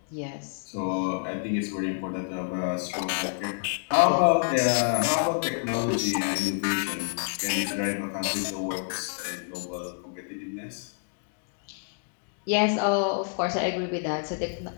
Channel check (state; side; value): silent; right; digital silence